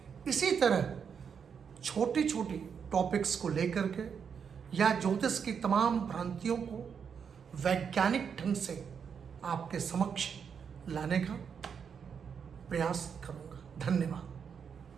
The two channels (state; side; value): quieter; left; 6.9 dB